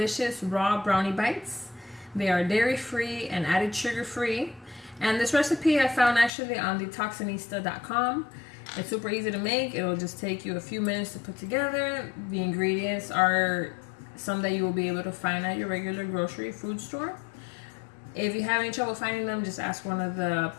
raw brownie bites. They are dairy free and added sugar free, and this recipe I found actually on detoxinista.com. It's super easy to make. It'll just take you a few minutes to put together. The ingredients are some that you will be able to find at your regular grocery food store. If you have any trouble finding them, just ask one of the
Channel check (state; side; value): drops out; right; at 6.3 s